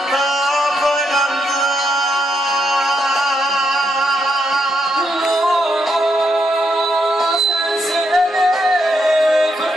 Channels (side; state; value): both; normal; correlation 0.79